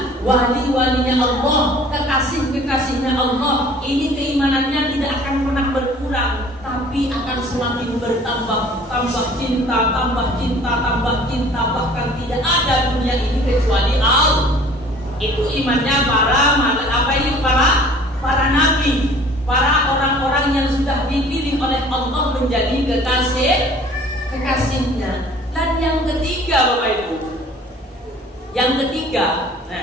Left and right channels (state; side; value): normal; both; correlation 0.50